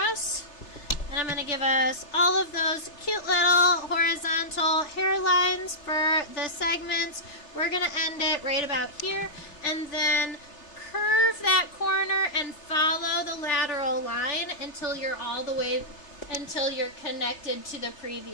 And I'm going to give us all of those cute little horizontal hairlines for the segments. We're going to end it right about here, and then curve that corner and follow the lateral line until you're connected to the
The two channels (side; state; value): right; late; 3.3 ms